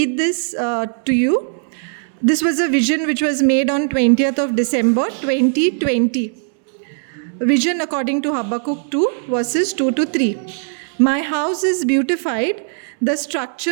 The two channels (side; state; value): left; silent; 64 dB below the other